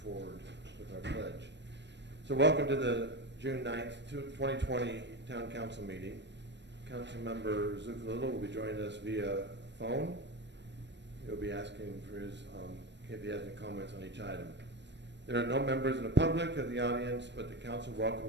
forward with our pledge. So welcome to the June 9th, 2020 Town Council meeting. Councilmember Zuccolillo will be joining us via phone. He'll be asking for his, if he has any comments on each item. There are no members in the public of the audience, but the council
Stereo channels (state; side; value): late; left; 0.51 ms